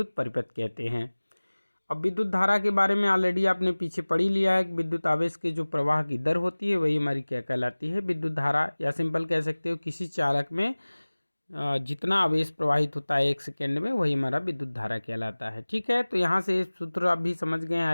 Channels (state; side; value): inverted; both; correlation -1.00